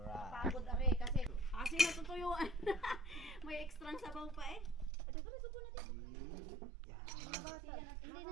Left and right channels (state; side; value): drops out; left; at 4.9 s